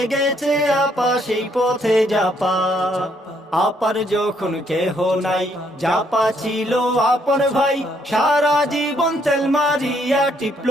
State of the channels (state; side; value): normal; both; correlation 0.70